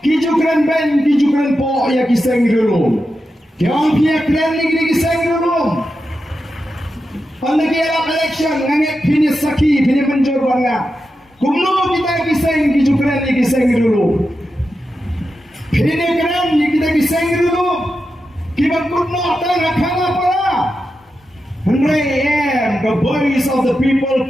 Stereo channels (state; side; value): normal; both; correlation 0.89